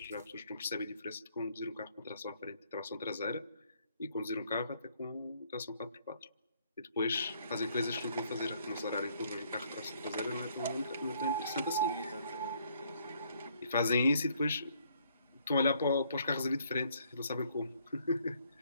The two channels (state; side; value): inverted; both; correlation -0.67